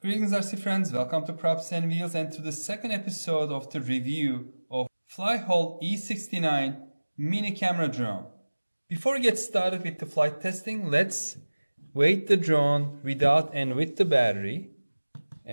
Greetings RC friends, welcome to Props and Wheels and to the second episode of the review of FLYHAL E69 mini camera drone. Before we get started with the flight testing, let's weight the drone without and with the battery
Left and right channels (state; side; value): inverted; both; correlation -1.00